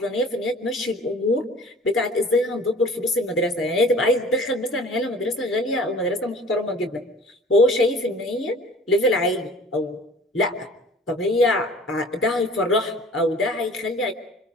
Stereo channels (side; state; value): both; normal; correlation 0.47